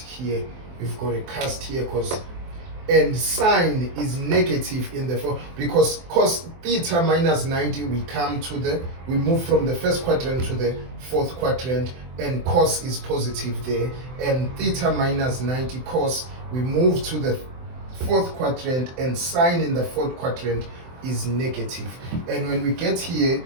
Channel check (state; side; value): late; left; 23 ms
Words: We've got a cast here, and sine is negative in the fourth, because cos theta minus 90, we move from the first quadrant to the fourth quadrant, and cos is positive there, and theta minus 90 cos, we move to the fourth quadrant, and sine in the fourth quadrant is negative. And when we get here,